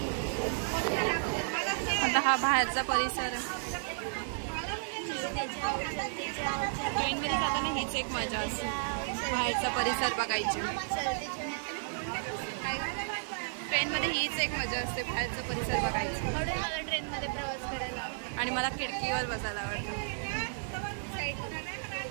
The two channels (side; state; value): left; silent; digital silence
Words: आता हा बाहेरचा परिसर. ट्रेनमध्ये जाताना हीच एक मजा असते, बाहेरचा परिसर बघायची. ट्रेनमध्ये हीच एक मजा असते, बाहेरचा परिसर बघायची. म्हणून मला ट्रेनमध्ये प्रवास करायला आवडतो. आणि मला खिडकीवर बसायला आवडतं.